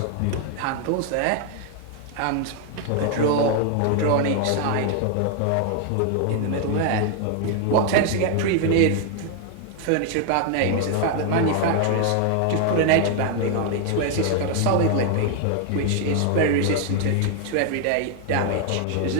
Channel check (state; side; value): different; both; correlation 0.00